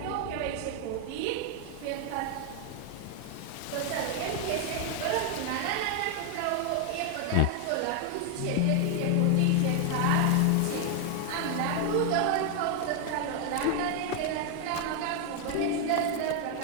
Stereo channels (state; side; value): different; both; correlation 0.01